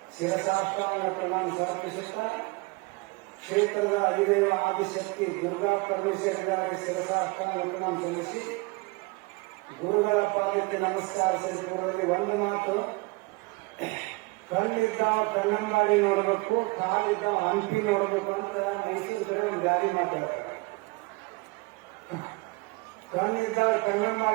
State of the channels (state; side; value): quieter; left; 25.7 dB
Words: ಶಿರಸಾಷ್ಟಾಂಗ ಪ್ರಣಾಮ ಸಮರ್ಪಿಸುತ್ತಾ ಕ್ಷೇತ್ರದ ಅಧಿದೇವ ಆದಿಶಕ್ತಿ ದುರ್ಗಾ ಪರಮೇಶ್ವರಿಗಾಗಿ ಶಿರಸಾಷ್ಟಾಂಗ ಪ್ರಣಾಮ ಸಲ್ಲಿಸಿ ಗುರುಗಳ ಪಾದಕ್ಕೆ ನಮಸ್ಕಾರ ಸಲ್ಲಿಸುವುದರಲ್ಲಿ ಒಂದು ಮಾತು, ಕಣ್ಣಿದ್ದಾವ ಕಣ್ಣಂಬಾಡಿ ನೋಡಬೇಕು, ಕಾಲಿದ್ದಾವ ಹಂಪಿ ನೋಡಬೇಕು ಅಂತ ಮೈಸೂರು ಕಡೆ ಒಂದು ಗಾಡಿ ಮಾತಾಡ್ತಾರೆ. ಕಣ್ಣಿದ್ದಾವ